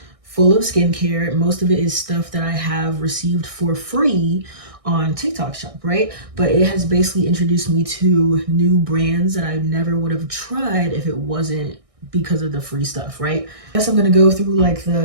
full of skincare. Most of it is stuff that I have received for free on TikTok shop, right? But it has basically introduced me to new brands that I never would have tried if it wasn't because of the free stuff, right? I guess I'm gonna go through like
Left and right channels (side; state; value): left; late; 1.6 ms